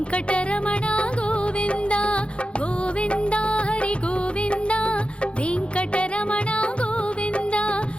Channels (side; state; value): right; late; 0.058 ms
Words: గోవింద గోవింద హరి గోవింద వెంకటరమణ గోవింద